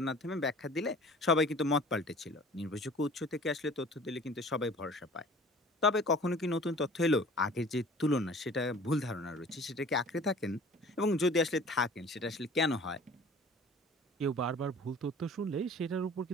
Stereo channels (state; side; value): normal; both; correlation 0.46